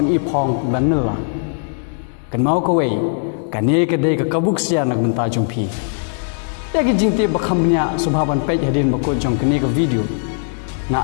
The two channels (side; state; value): right; silent; digital silence